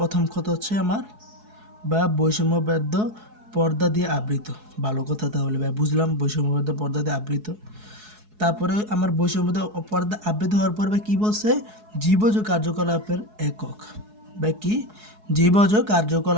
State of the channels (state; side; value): late; left; 4.7 ms